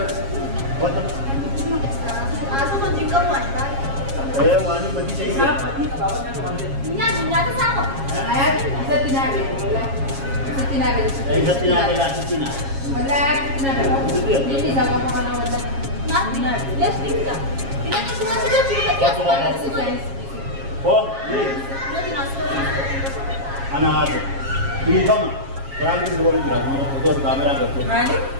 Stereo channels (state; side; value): late; left; 7.3 ms